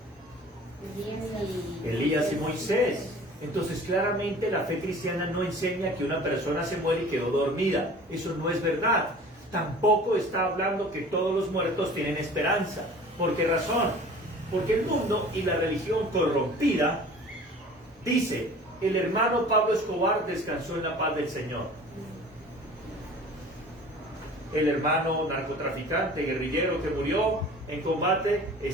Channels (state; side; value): normal; both; correlation 0.44